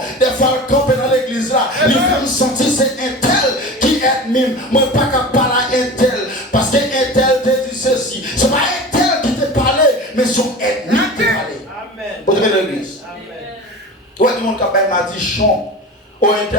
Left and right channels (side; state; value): both; normal; correlation 0.33